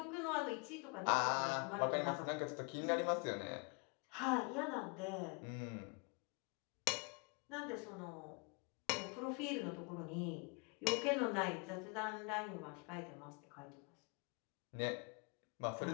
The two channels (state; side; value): quieter; right; 33.3 dB